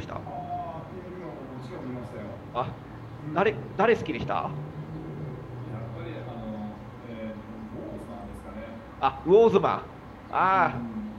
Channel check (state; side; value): identical; both; correlation 1.00